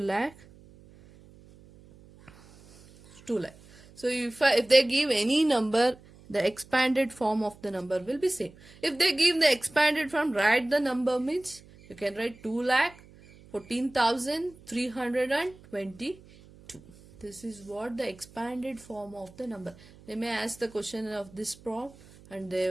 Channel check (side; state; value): right; noise; hum, 23 dB below the sound